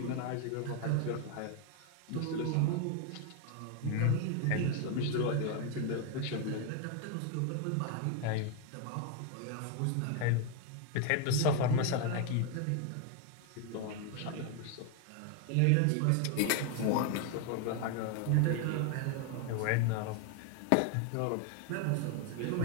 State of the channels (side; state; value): both; different; correlation 0.01